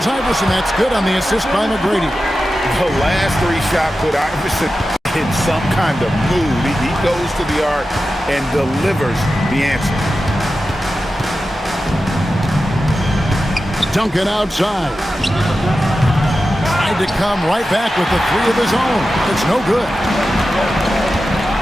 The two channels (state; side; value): normal; both; correlation 0.92